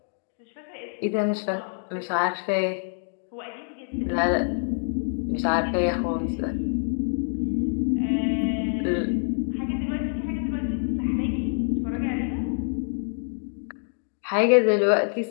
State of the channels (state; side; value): silent; right; 59 dB below the other